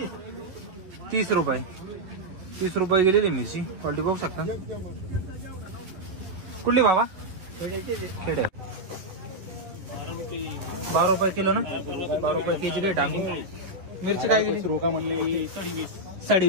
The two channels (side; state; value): left; late; 11 ms